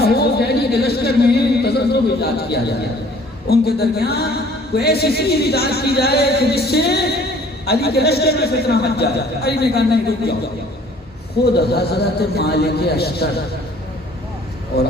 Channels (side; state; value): both; normal; correlation 0.55